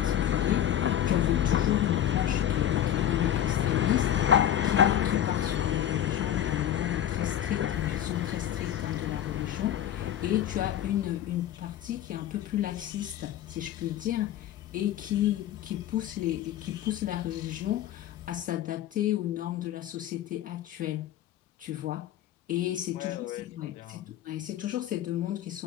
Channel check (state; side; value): quieter; right; 11.1 dB